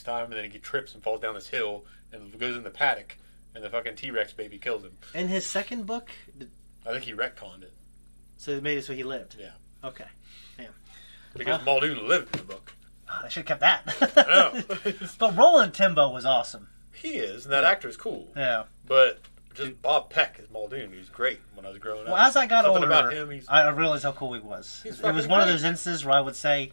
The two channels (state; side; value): inverted; both; correlation -1.00